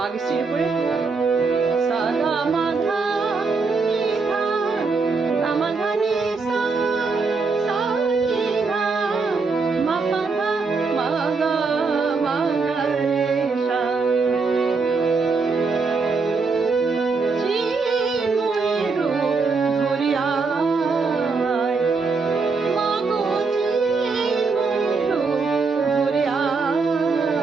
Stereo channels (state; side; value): quieter; left; 4.4 dB